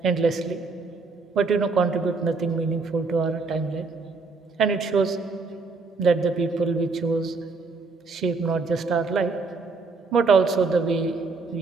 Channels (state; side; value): quieter; left; 4.1 dB